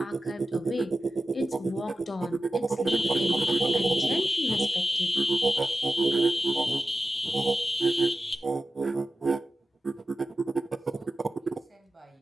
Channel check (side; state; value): both; normal; correlation 0.93